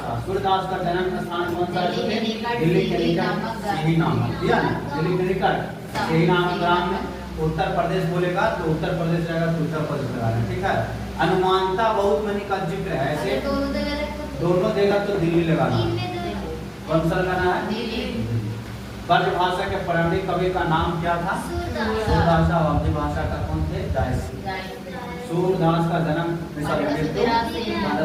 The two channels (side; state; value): both; identical; correlation 1.00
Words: सूरदास का जन्म स्थान कौन सा है? दिल्ली के निकट यही नाम दिया ना, दिल्ली के निकट यही नाम ग्राम में। उत्तर प्रदेश बोलेगा तो उत्तर प्रदेश रहेगा तो उत्तर प्रदेश लगाना, ठीक है। अनुमानता बहुत मनी का जिक्र है, ऐसे दोनों देगा तो दिल्ली लगाना। कौन सा लगाना है? ब्रज भाषा के प्रारंभिक कवि का नाम क्या था? सूरदास। अवधी भाषा का कौन थे? जायसी। सूरदास का जन्म